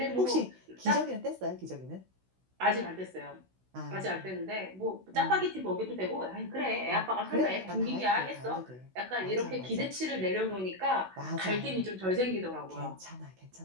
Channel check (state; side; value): late; left; 16 ms